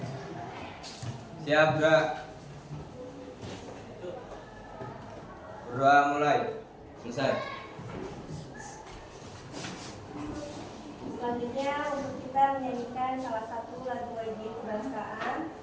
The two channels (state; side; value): identical; both; correlation 1.00